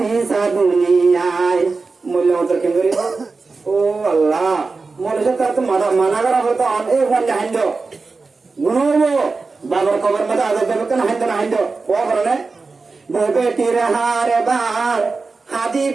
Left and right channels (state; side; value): quieter; left; 4.1 dB